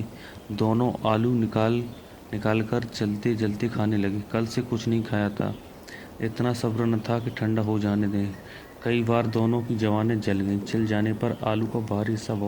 दोनों आलू निकाल कर जलते जलते खाने लगे। कल से कुछ नहीं खाया था, इतना सब्र न था कि ठंडा हो जाने दें। कई बार दोनों की जवानें जल गईं। जल जाने पर आलू का बाहरी हिस्सा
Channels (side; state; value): both; identical; correlation 1.00